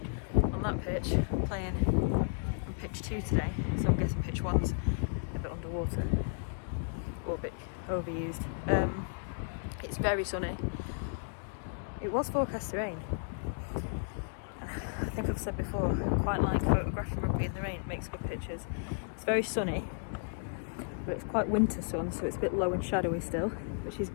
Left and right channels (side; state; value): right; silent; digital silence